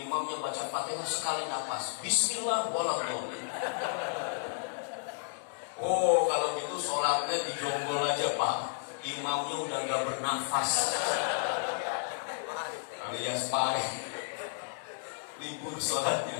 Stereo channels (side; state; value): right; silent; digital silence